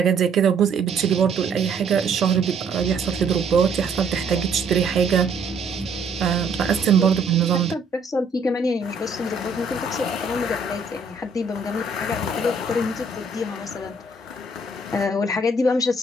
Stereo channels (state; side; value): quieter; left; 3.5 dB